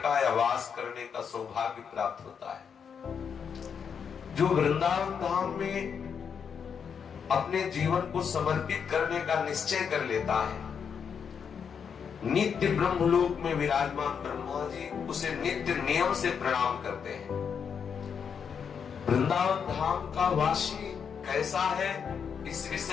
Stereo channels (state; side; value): quieter; right; 6.9 dB